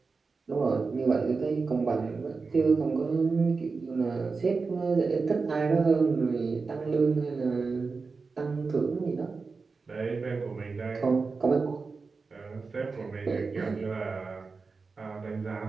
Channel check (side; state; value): left; quieter; 4.4 dB